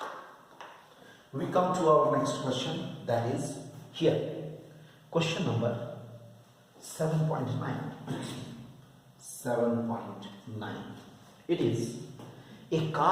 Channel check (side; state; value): both; identical; correlation 1.00